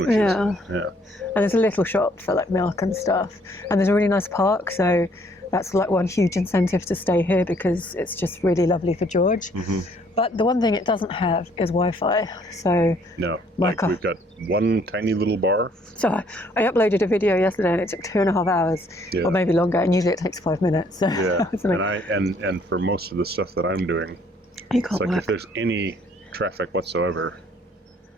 Yeah. Yeah. And there's a little shop for like milk and stuff. And there's a really nice park, so that's like one huge incentive to stay here because it's just really lovely for George. Mm-hmm. But the one thing it doesn't have is Wi-Fi. So No, like we've got one tiny little bar. So I uploaded a video yesterday and it took 2.5 hours, Yeah. or maybe longer, and usually it takes 5 minutes. So Yeah, it's like, and for most of the stuff that I'm doing, you it's can't like work. if there's any traffic whatsoever,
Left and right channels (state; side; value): normal; both; correlation 0.64